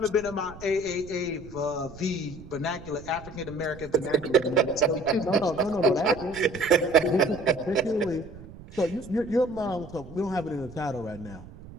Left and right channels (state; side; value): noise; right; rumble, 17 dB below the sound